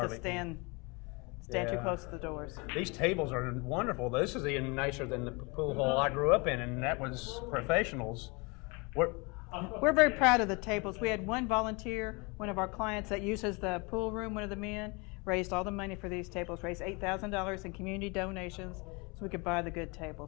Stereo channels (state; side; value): quieter; right; 28.9 dB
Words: stand too close to the doors. These tables are wonderful. This is even nicer than the pool hall I grew up in, and that was professionals. We're very proud of the tables. We had one volunteer, one of our clients that uses the pool room, one of the men, raised all the money for these tables, raised $8,000 in community donations so we could buy the good